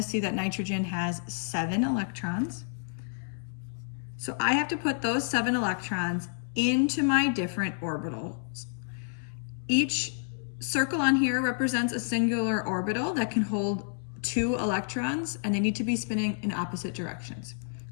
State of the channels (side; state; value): right; silent; 58 dB below the other